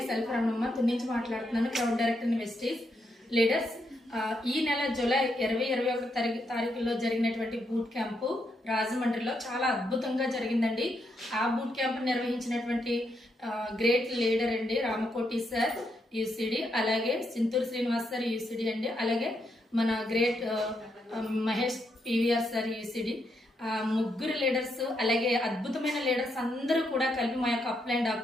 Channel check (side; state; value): both; normal; correlation 0.80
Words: self Ramanamma నుంచి మాట్లాడుతున్నాను, క్రౌడ్ డైరెక్టర్ వెస్టీస్. లీడర్స్, ఈ నెల జూలై 20-21 తారీఖులో జరిగినటువంటి బూట్ క్యాంపు రాజమండ్రిలో చాలా అద్భుతంగా జరిగిందండి. ఆ బూట్ క్యాంప్ నిర్వహించినటువంటి గ్రేట్ లీడర్ అండి రామకోటి సార్ యూసిడి, అలాగే సింతూరు శ్రీనివాస్ సార్ యూసిడి అండి, అలాగే మన great Mahesh PVR sir UCD. ముగ్గురు లీడర్స్, అలాగే అద్భుతమైన లీడర్స్ అందరూ కూడా కలిపి మా యొక్క అప్లైన్